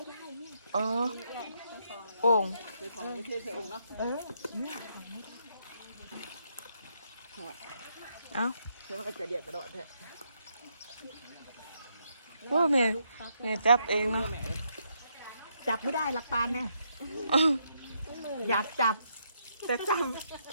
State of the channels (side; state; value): both; inverted; correlation -0.76